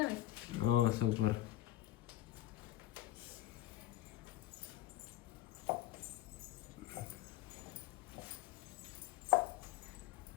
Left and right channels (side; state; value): right; quieter; 14.9 dB